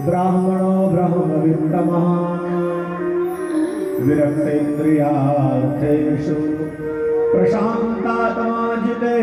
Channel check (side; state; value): both; identical; correlation 1.00